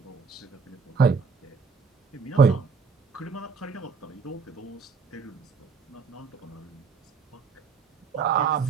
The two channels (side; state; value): left; quieter; 5.1 dB